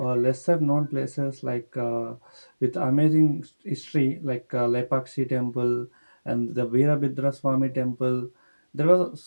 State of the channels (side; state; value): both; inverted; correlation -1.00